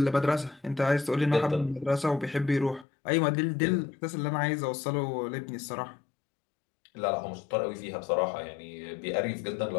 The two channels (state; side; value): drops out; right; at 2.9 s